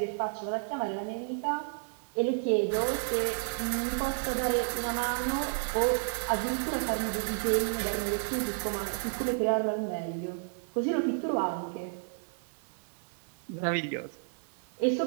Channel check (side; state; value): left; silent; digital silence